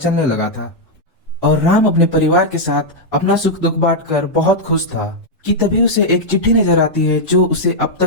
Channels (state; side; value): normal; both; correlation -0.03